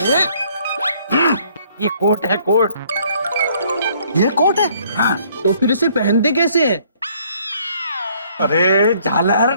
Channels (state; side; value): inverted; both; correlation -0.62